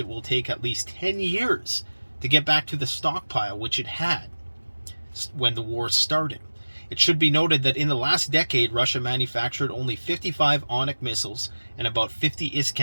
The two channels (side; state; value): both; inverted; correlation -1.00